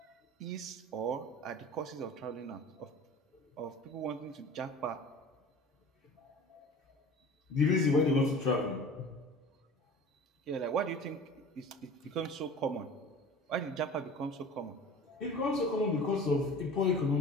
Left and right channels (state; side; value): normal; both; correlation 0.41